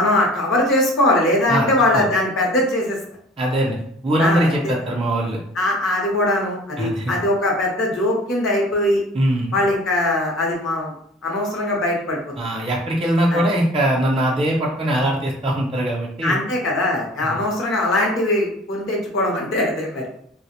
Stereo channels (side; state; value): both; normal; correlation 0.45